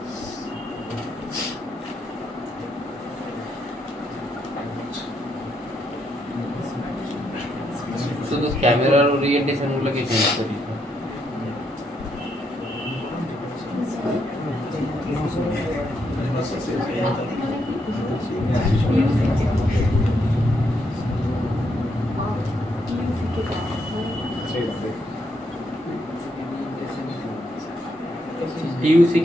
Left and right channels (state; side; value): normal; both; correlation 0.77